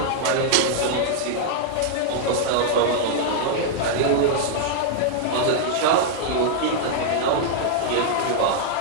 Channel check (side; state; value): both; different; correlation -0.01